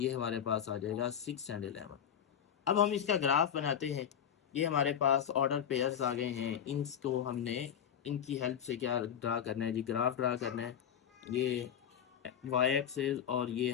हमारे पास आ जाएगा 6 एंड 11। अब हम इसका ग्राफ बनाते हैं। ये हमारे पास ऑर्डर पेयर्स आ गए हैं, इनको हमने इनकी हेल्प से क्या ड्रा करना है जी, ग्राफ ड्रा करना है। ये वाई एक्सिस, और ये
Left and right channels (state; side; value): quieter; right; 8.8 dB